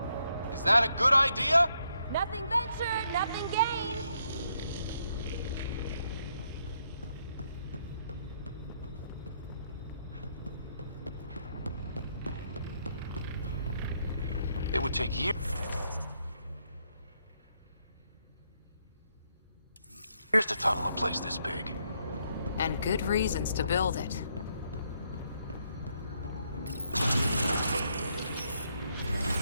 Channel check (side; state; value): both; inverted; correlation -0.75